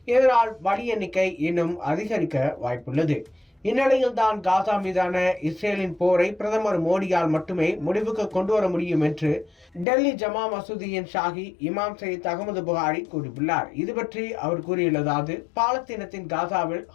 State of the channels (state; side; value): drops out; right; at 9.9 s